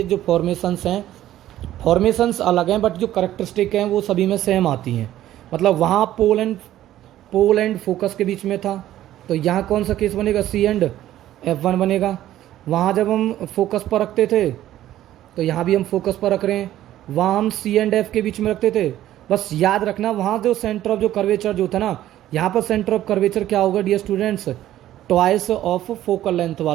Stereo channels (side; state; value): left; quieter; 13.2 dB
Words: जो फॉर्मेशंस हैं, फॉर्मेशंस अलग हैं बट जो करेक्टरिस्टिक हैं वो सभी में सेम आती हैं। मतलब वहाँ पोल एंड फोकस के बीच में था, तो यहाँ कौन सा केस बनेगा? C&F1 बनेगा। वहाँ जब हम फोकस पर रखते थे तो यहाँ भी हम फोकस पर रख रहे हैं, वहाँ हम C&F के बीच में रखते थे। बस याद रखना वहाँ जो सेंटर ऑफ जो कर्वेचर जो था ना, यहाँ पर सेंटर ऑफ कर्वेचर क्या होगा dear students? Twice of focal length